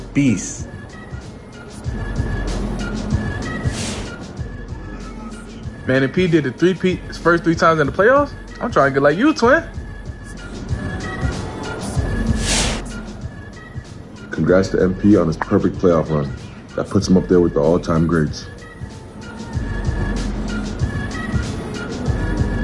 Man, if P did the three-peat his first 3 times in the playoffs, I'm trying to get like you, twin. Congrats to MP on his perfect playoff run. That puts him up there with the all-time greats.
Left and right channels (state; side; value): identical; both; correlation 1.00